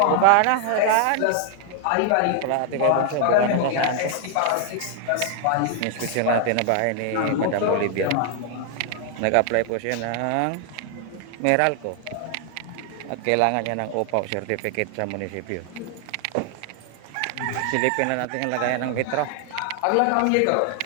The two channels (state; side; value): different; both; correlation 0.00